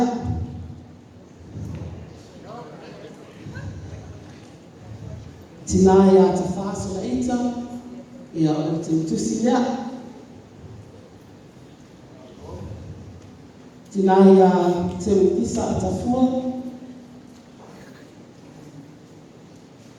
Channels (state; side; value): identical; both; correlation 1.00